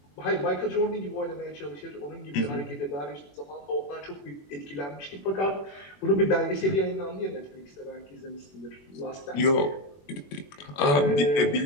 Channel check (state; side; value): late; right; 21 ms